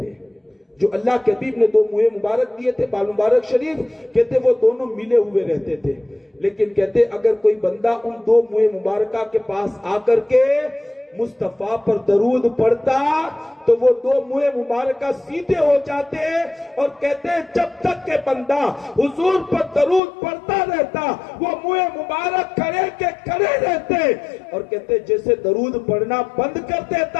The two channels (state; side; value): drops out; right; at 20.0 s